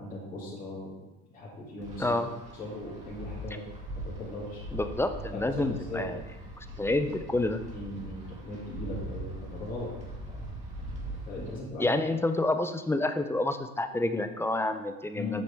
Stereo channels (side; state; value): both; normal; correlation 0.70